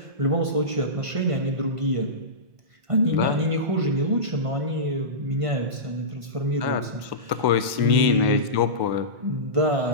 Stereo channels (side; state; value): left; late; 1.1 ms